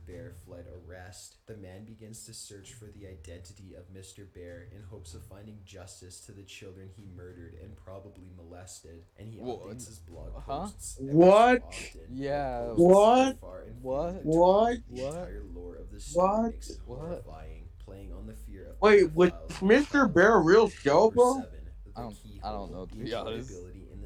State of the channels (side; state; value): both; identical; correlation 1.00